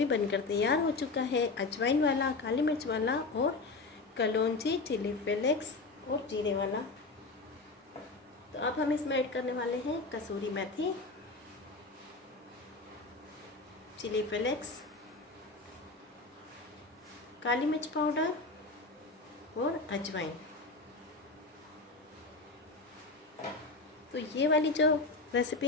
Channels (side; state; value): right; quieter; 3.6 dB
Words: बनकर तैयार हो चुका है, अजवाइन वाला, काली मिर्च वाला और कलौंजी, चिली फ्लेक्स और जीरे वाला। तो अब हम इसमें ऐड करने वाले हैं कसूरी मेथी, चिली फ्लेक्स, काली मिर्च पाउडर और अजवाइन। तो ये वाली जो रेसिपी